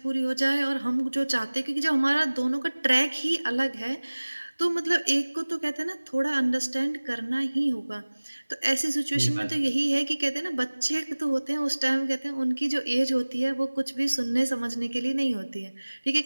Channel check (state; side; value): inverted; both; correlation -1.00